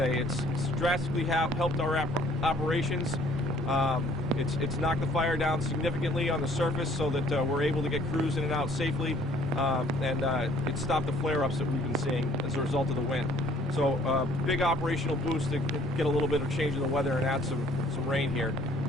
It's drastically helped our operations. It's knocked the fire down significantly on the surface so that we're able to get crews in and out safely, and it stopped the flare-ups that we've been seeing as a result of the wind. So big operational boost to get a little bit of change in the weather and add some rain here.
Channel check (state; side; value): normal; both; correlation 0.59